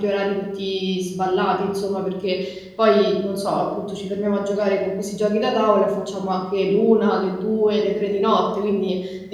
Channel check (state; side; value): identical; both; correlation 1.00